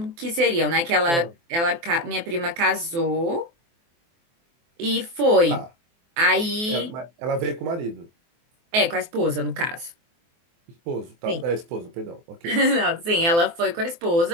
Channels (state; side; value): late; left; 24 ms